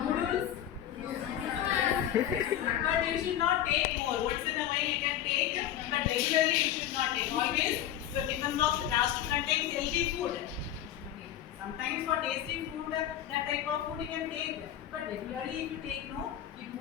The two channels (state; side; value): quieter; right; 11.3 dB